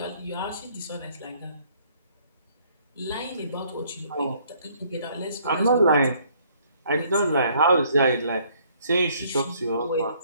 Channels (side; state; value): both; inverted; correlation -0.63